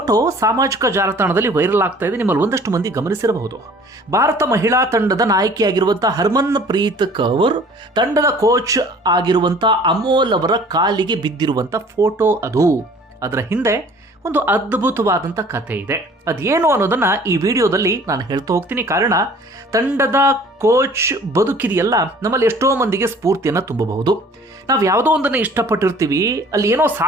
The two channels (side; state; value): both; normal; correlation 0.51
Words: ಸಾಮಾಜಿಕ ಜಾಲತಾಣದಲ್ಲಿ ವೈರಲ್ ಆಗ್ತಾ ಇದೆ. ನಿಮ್ಮಲ್ಲಿ ಒಂದಷ್ಟು ಮಂದಿ ಗಮನಿಸಿರಬಹುದು. ಭಾರತ ಮಹಿಳಾ ತಂಡದ ನಾಯಕಿಯಾಗಿರುವಂತಹ ಹರ್ಮನ್ ಪ್ರೀತ್ ಕೌರ್ ತಂಡದ ಕೋಚ್ ಆಗಿರುವಂಥ ಅಮೋಲ್ ಅವರ ಕಾಲಿಗೆ ಬಿದ್ದಿರುವಂಥ ಫೋಟೋ ಅದು. ಅದರ ಹಿಂದೆ ಒಂದು ಅದ್ಭುತವಾದಂಥ ಕಥೆ ಇದೆ. ಅದೇನು ಅನ್ನೋದನ್ನ ಈ ವಿಡಿಯೋದಲ್ಲಿ ನಾನು ಹೇಳ್ತಾ ಹೋಗ್ತೀನಿ. ಕಾರಣ, ತಂಡದ ಕೋಚ್ ಬದುಕಿದೆಯಲ್ಲ, ನಮ್ಮಲ್ಲಿ ಎಷ್ಟೋ ಮಂದಿಗೆ ಸ್ಫೂರ್ತಿಯನ್ನು ತುಂಬಬಹುದು. ನಾವು ಯಾವುದೋ ಒಂದನ್ನು ಇಷ್ಟಪಟ್ಟಿರ್ತೀವಿ, ಅಲ್ಲಿ ಏನೋ